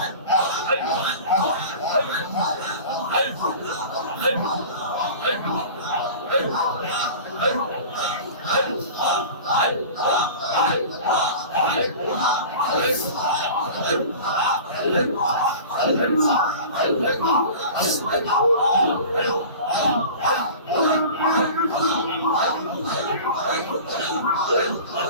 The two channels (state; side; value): inverted; both; correlation -0.38